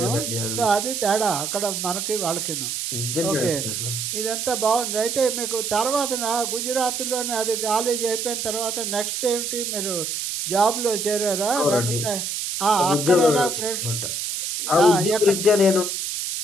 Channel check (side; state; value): right; noise; hiss, 3 dB below the sound